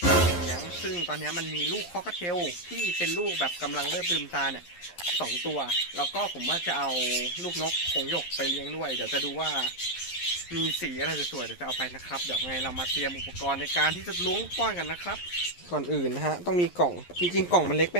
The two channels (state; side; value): late; right; 11 ms